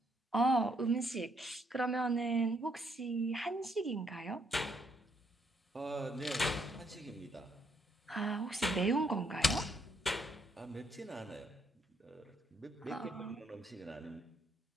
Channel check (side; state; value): both; normal; correlation 0.72